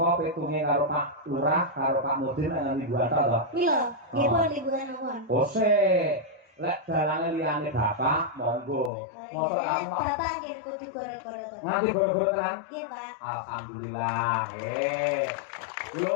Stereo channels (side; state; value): right; drops out; at 8.9 s